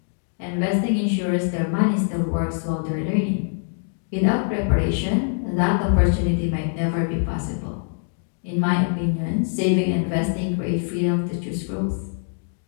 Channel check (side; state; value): right; silent; digital silence